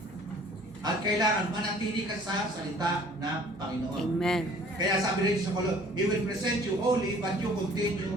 At kailangan manatili ka sa salita ng Panginoon. Amen. Kaya sabi rin sa Colossians, He will present you holy, but you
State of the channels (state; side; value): normal; both; correlation 0.52